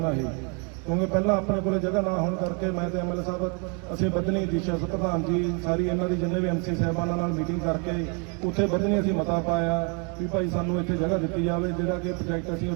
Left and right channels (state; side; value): quieter; left; 35.1 dB